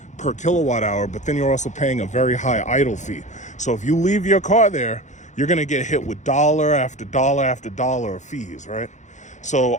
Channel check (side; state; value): right; late; 0.35 ms